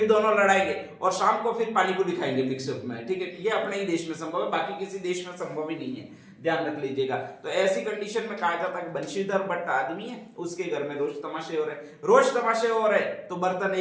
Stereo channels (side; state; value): both; identical; correlation 1.00